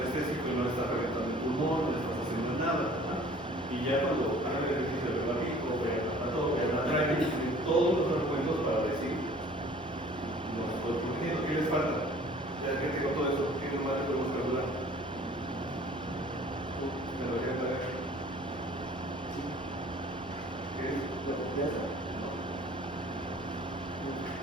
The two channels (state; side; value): normal; both; correlation 0.50